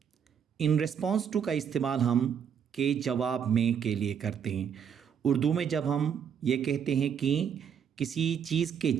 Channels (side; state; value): left; quieter; 7.8 dB